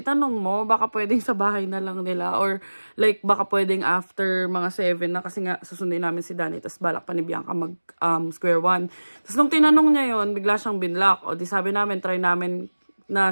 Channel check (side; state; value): both; inverted; correlation -1.00